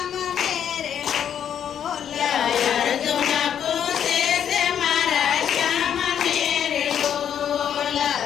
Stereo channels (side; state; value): right; quieter; 9.0 dB